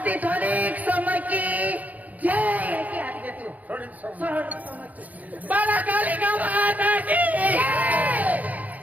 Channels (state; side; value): late; left; 0.077 ms